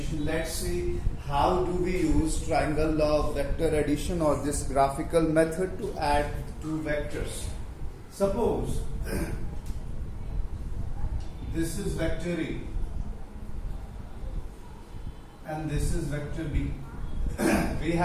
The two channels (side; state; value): both; identical; correlation 1.00